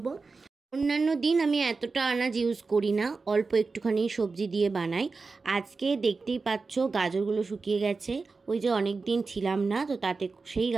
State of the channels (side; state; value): left; quieter; 4.2 dB